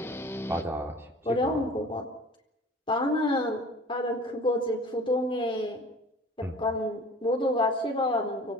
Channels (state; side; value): normal; both; correlation 0.45